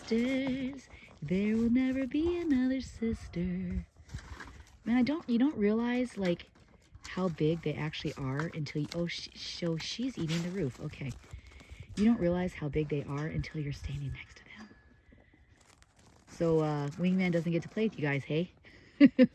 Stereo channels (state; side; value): identical; both; correlation 1.00